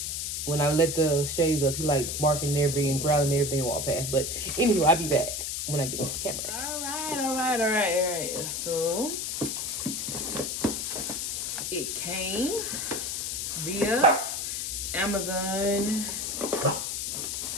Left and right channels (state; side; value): noise; left; hiss, 2 dB below the sound